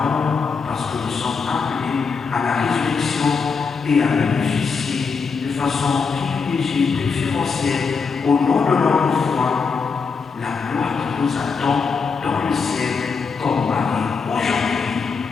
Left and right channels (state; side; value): quieter; right; 5.3 dB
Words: parce que nous sommes appelés à la résurrection et à bénéficier de façon privilégiée, préférentielle, au nom de notre foi, la gloire qui nous attend dans le ciel comme Marie.